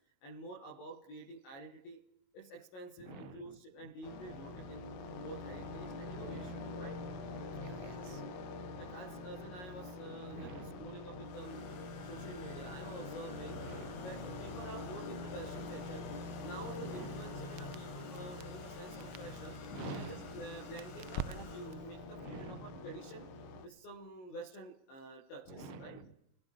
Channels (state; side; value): late; right; 22 ms